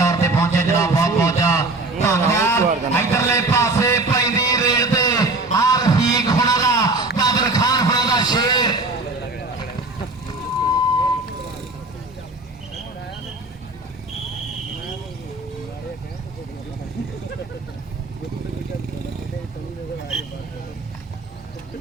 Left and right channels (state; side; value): quieter; left; 3.0 dB